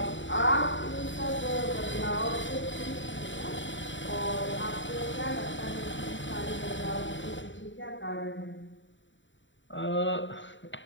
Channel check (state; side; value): late; right; 0.54 ms